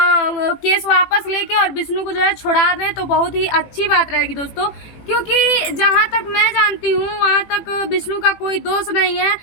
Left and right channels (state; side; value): late; right; 18 ms